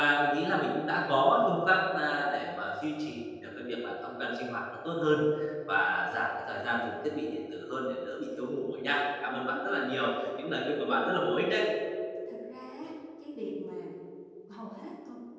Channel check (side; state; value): both; identical; correlation 1.00